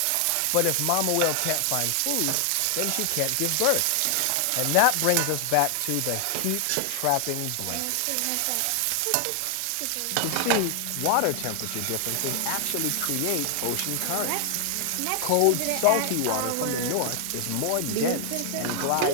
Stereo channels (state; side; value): different; both; correlation 0.00